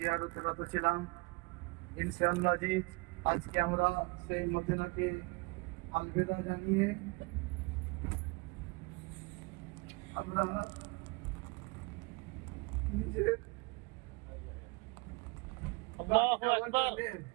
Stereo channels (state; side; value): quieter; left; 27.3 dB